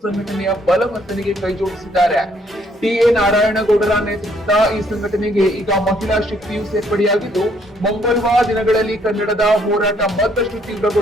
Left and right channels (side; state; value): both; normal; correlation 0.67